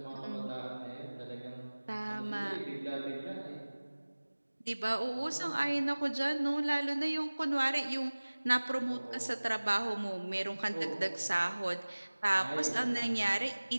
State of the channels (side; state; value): both; inverted; correlation -1.00